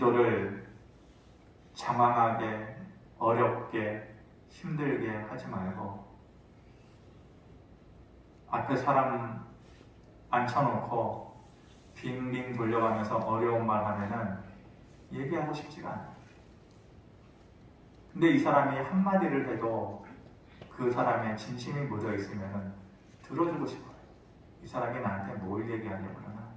장황하게, 어렵게, 힘들게 하지 말고 앞에 사람 앉혀놓고 빙빙 돌려가면서 어려운 말 하면은 얘기하고 싶지가 않아요. 근데 이 사람이 한마디를 해도 그 사람의 진심이 묻어 있으면 들어주고 싶어요. 이 사람이 나한테 뭘 얘기하려고 그러나.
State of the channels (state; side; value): identical; both; correlation 1.00